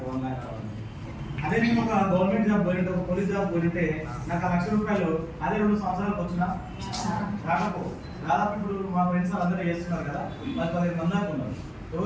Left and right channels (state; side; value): identical; both; correlation 1.00